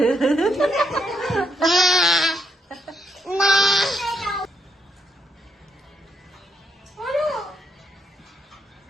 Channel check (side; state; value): both; normal; correlation 0.77